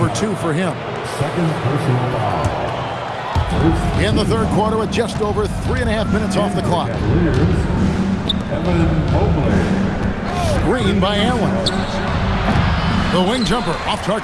2 for him. Second personal foul. In the third quarter with just over 3.5 minutes off the clock. Evan Mobley. Screen by Allen. The wing jumper off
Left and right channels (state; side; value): identical; both; correlation 1.00